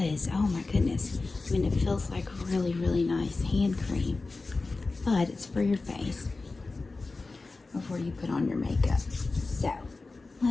Oh my goodness. I mean, it feels like really, really nice hand cream, but it's for your face before you put on your makeup. So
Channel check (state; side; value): quieter; right; 3.6 dB